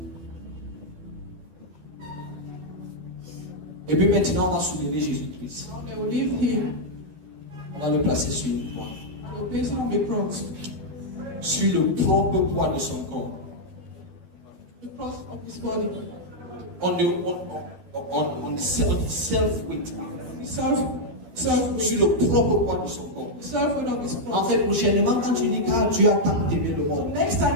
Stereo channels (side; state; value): left; late; 12 ms